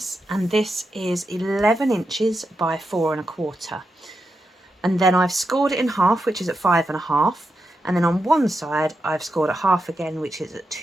and this is 11 inches by 4 1/4. And then I've scored it in half, which is at 5 1/2. And then on one side, I've scored it half again, which is at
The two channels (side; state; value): both; normal; correlation 0.86